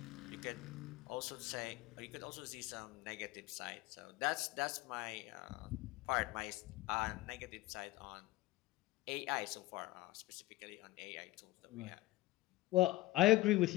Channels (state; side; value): quieter; right; 18.5 dB